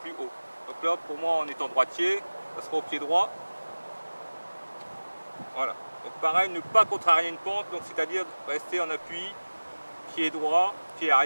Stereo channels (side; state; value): both; inverted; correlation -1.00